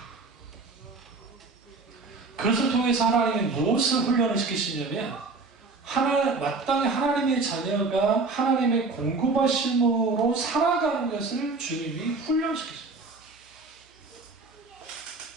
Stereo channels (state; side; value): quieter; left; 3.9 dB